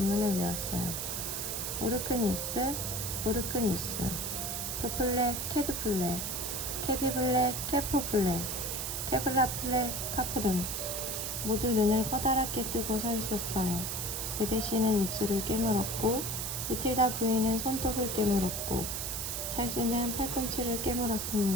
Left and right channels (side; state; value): right; noise; hiss, 3 dB below the sound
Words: 외웠어요. 오르크니스, 오르크니스, 크플레, 캐드플레, 캐비블레, 캐포플레, 캐블라플레, 카프돈. 모두 눈을 커다랗게 뜨고 서 있었어요. 베데시는 입술을 깨물었고 유틸다 부인은 손톱을 깨물었고 찰스는 팔꿈치를